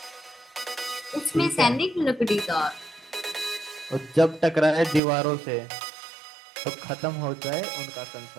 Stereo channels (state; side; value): drops out; left; at 5.0 s